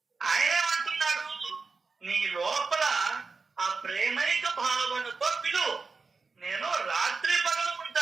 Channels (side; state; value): left; quieter; 4.5 dB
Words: ఆయన అంటున్నాడు, నీ లోపల ఆ ప్రేమైక భావనతో పిలువు, నేను రాత్రి పగలు